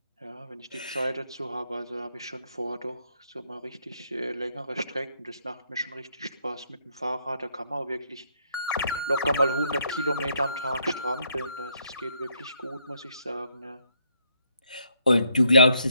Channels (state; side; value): inverted; both; correlation -0.71